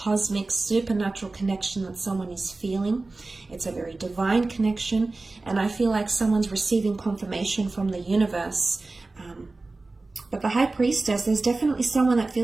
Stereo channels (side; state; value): left; quieter; 3.4 dB